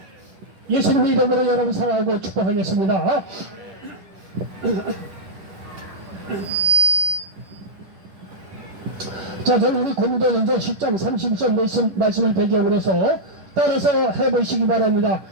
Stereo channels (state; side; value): late; left; 10 ms